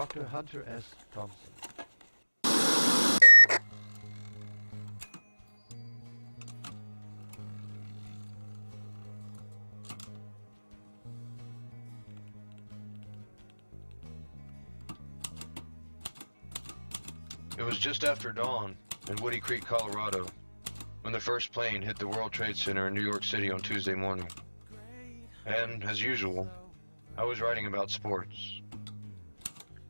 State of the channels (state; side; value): inverted; both; correlation -1.00